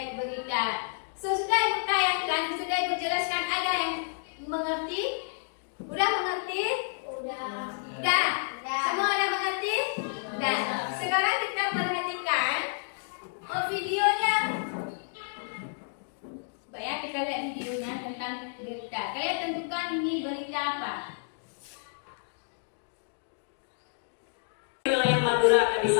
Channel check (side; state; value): right; silent; digital silence